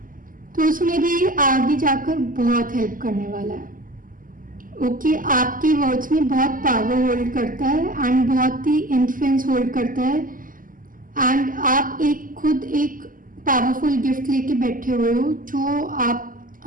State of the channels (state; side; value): late; left; 0.40 ms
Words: तो उसमें भी आगे जाकर बहुत हेल्प करने वाला है। ओके, आपके वर्ड्स में बहुत पावर होल्ड करता है एंड बहुत ही इन्फ्लुएंस होल्ड करता है। एंड आप खुद एक पावरफुल गिफ्ट लेके बैठे हुए हो जो आप